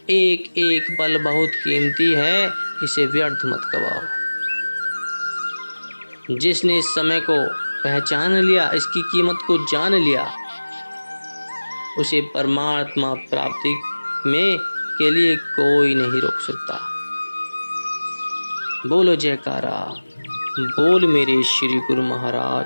एक एक पल बहुत कीमती है, इसे व्यर्थ मत गवाओ। जिसने इस समय को पहचान लिया, इसकी कीमत को जान लिया, उसे परमात्मा प्राप्ति में के लिए कोई नहीं रोक सकता। बोलो जयकारा, बोल मेरे श्री गुरु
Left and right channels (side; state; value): both; inverted; correlation -1.00